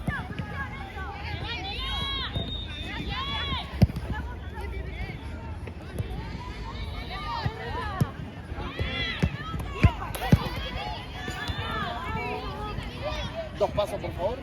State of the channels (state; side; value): identical; both; correlation 1.00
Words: Dos pasos, por favor.